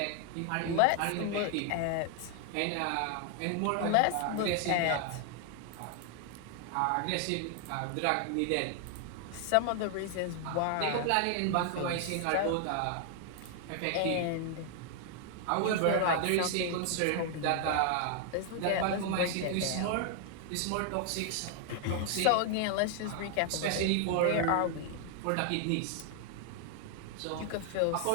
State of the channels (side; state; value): both; different; correlation 0.00